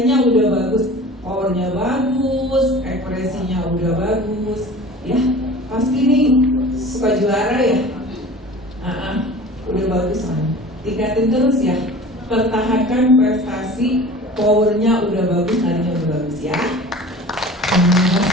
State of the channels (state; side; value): normal; both; correlation 0.41